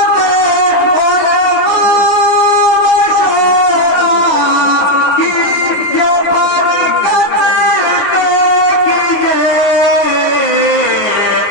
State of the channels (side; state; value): right; late; 9.4 ms